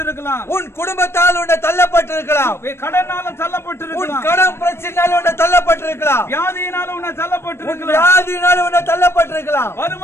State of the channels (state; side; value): late; right; 0.12 ms